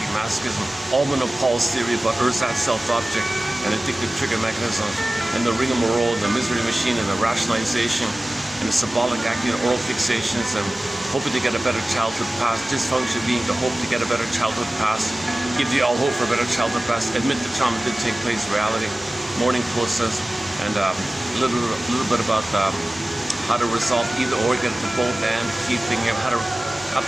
masochism, Alman of Paul's theory about ersatz self-object and addictive trigger mechanisms, and the rigmarole, the misery machine, and the rationalization, and the symbolic acting and oral fixations, and hoping to get a better childhood past, dysfunction being the hope to get a better childhood past, give you all hope for a better childhood past, admit the trauma did take place in reality, mourning process, and a little bit about how to resolve either or, get to both, and key thing, how to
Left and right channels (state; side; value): normal; both; correlation 0.97